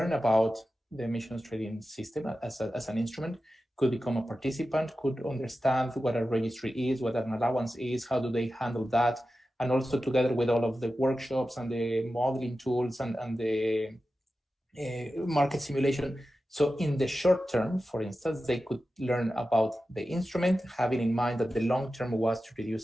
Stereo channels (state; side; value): normal; both; correlation 0.93